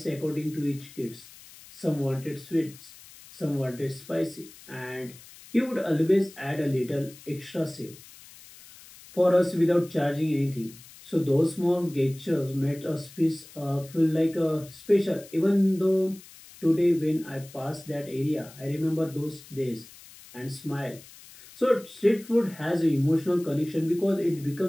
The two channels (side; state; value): left; noise; hiss, 20 dB below the sound